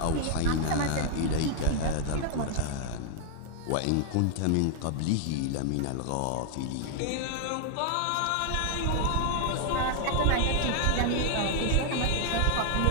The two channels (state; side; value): different; both; correlation 0.00